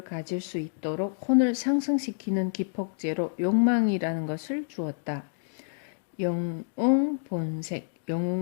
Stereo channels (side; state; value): right; silent; digital silence